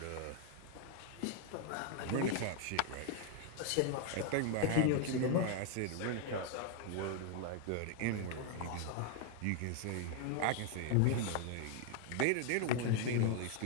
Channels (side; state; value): both; different; correlation 0.00